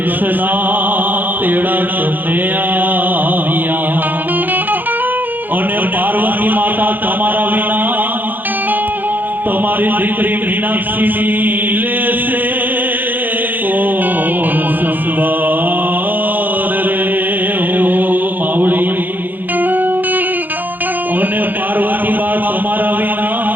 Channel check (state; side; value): late; left; 0.087 ms